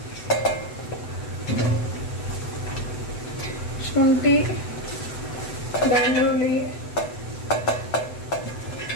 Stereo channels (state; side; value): late; right; 8.0 ms